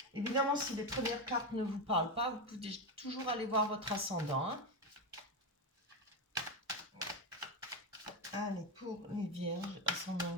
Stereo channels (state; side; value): normal; both; correlation 0.12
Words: évidemment, si les premières cartes ne vous parlent pas, vous pouvez toujours aller voir votre ascendant. Hein. Allez, pour les vierges, ascendant